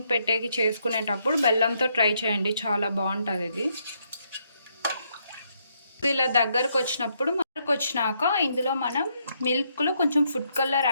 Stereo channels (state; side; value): inverted; both; correlation -0.75